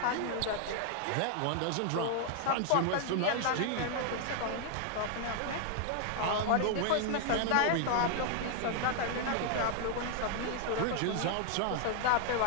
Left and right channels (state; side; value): different; both; correlation 0.00